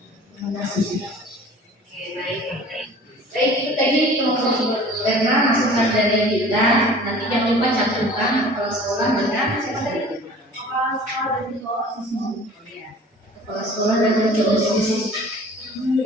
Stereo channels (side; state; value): both; normal; correlation 0.46